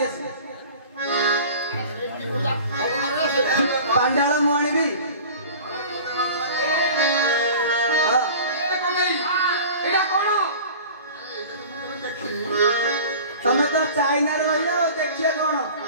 ଆସି ପାଣ୍ଡାଳ ମୁଁ ଆଣିବି ହଁ ଏଇଟା କଣ ତମେ ତ ଚାଇନାରେ ରହିଲ ଆଉ ଦେଖିବା କଣ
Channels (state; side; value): inverted; both; correlation -0.40